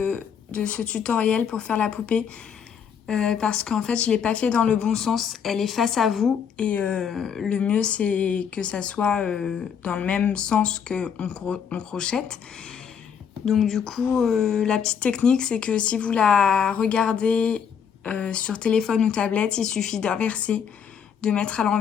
ce tutoriel pour faire la poupée. Parce qu'en fait je l'ai pas fait dans le bon sens, elle est face à vous et le mieux c'est que ça soit dans le même sens qu'on crochette. Donc du coup la petite technique c'est que si vous la regardez sur téléphone ou tablette, il suffit d'inverser, de mettre à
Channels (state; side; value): quieter; right; 7.4 dB